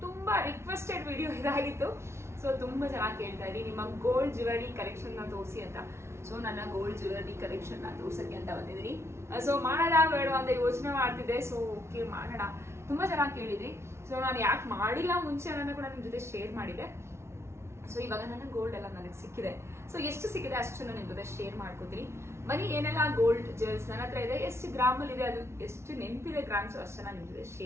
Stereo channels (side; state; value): left; late; 0.13 ms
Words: ತುಂಬಾ ರಿಕ್ವೆಸ್ಟೆಡ್ ವಿಡಿಯೋ ಇದಾಗಿತ್ತು. ಸೊ ತುಂಬಾ ಚೆನ್ನಾಗಿ ಕೇಳ್ತಾ ಇದ್ದೀನಿ, ನಿಮ್ಮ ಗೋಲ್ಡ್ ಜ್ಯುವೆಲರಿ ಕಲೆಕ್ಷನ್ ನ ತೋರಿಸಿ ಅಂತ. ಸೊ ನನ್ನ ಗೋಲ್ಡ್ ಜ್ಯುವೆಲರಿ ಕಲೆಕ್ಷನ್ ನ ತೋರ್ಸಕ್ಕೆ ಅಂತ ಬಂದಿದ್ದೀನಿ. ಸೊ ಮಾಡೋಣ ಬೇಡ ಅಂತ ಯೋಚನೆ ಮಾಡ್ತಿದ್ದೆ. ಸೊ ಓಕೆ ಮಾಡೋಣ, ತುಂಬಾ ಚೆನ್ನಾಗಿ ಕೇಳಿದ್ರಿ. ಸೊ ನಾನು ಯಾಕೆ ಮಾಡಿಲ್ಲ ಮುಂಚೆ ಅನ್ನೋದನ್ನ ಕೂಡ ನಿಮ್ ಜೊತೆ ಶೇರ್ ಮಾಡಿದೆ. ಸೊ ಇವಾಗ ನನ್ನ ಗೋಲ್ಡ್ ಎಲ್ಲ ನನಗೆ ಸಿಕ್ಕಿದೆ. ಸೊ ಎಷ್ಟು ಸಿಕ್ಕಿದೆ ಅಷ್ಟು ನಾನು ನಿಮ್ ಜೊತೆ ಶೇರ್ ಮಾಡ್ಕೋತೀನಿ. ಬನ್ನಿ, ಏನೆಲ್ಲ ಗೋಲ್ಡ್ ಜ್ಯುವೆಲ್ಸ್ ನನ್ನ ಹತ್ರ ಇದೆ, ಎಷ್ಟು ಗ್ರಾಮಲ್ಲಿ ಇದೆ, ಅದು ಎಷ್ಟು ನೆನಪಿದೆ ಗ್ರಾಮ್ಸ್ ಅಷ್ಟು ನಾನು ನಿಮ್ ಜೊತೆ